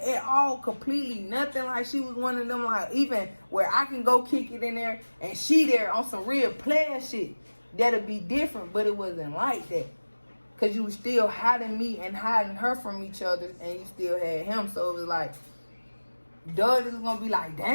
all, completely nothing. Like, she was one of them, like, even where I can go kick it in there and she there on some real player shit. That'd be different, but it wasn't like that, because you was still hiding me and hiding her from each other, and you still had him. So it was like, Doug is gonna be like,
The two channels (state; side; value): inverted; both; correlation -1.00